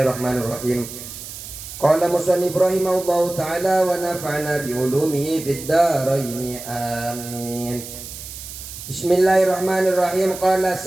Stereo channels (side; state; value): right; noise; hiss, 12 dB below the sound